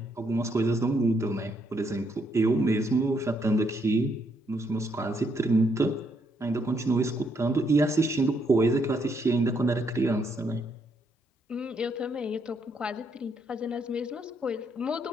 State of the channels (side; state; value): both; normal; correlation 0.74